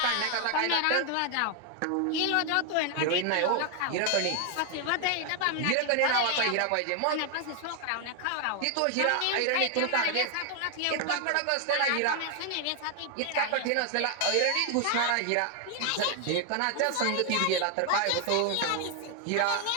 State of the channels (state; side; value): different; both; correlation 0.00